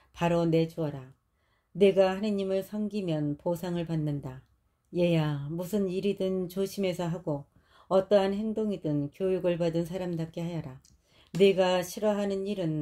바로 내주어라. 내가 하느님을 섬기면 보상을 받는다. 얘야, 무슨 일이든 조심해서 하고 어떠한 행동이든 교육을 받은 사람답게 하여라. 네가 싫어하는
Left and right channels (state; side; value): identical; both; correlation 1.00